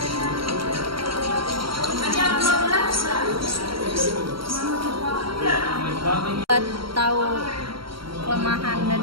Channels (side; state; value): left; late; 0.74 ms